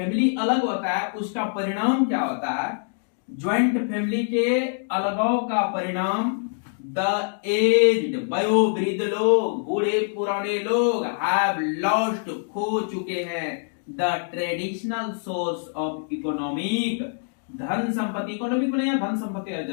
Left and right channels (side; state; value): right; silent; digital silence